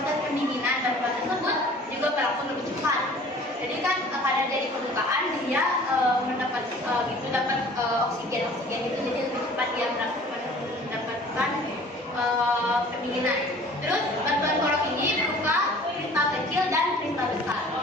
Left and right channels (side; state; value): both; normal; correlation 0.48